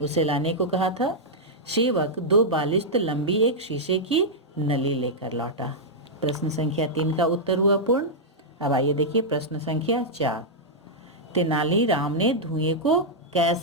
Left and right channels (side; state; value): both; normal; correlation -0.07